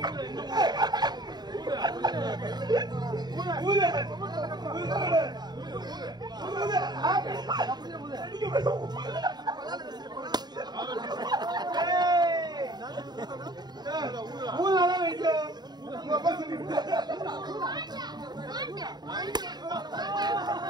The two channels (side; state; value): left; late; 0.20 ms